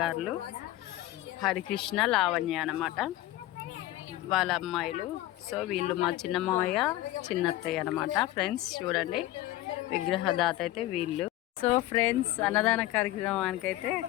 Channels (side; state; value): right; quieter; 15.8 dB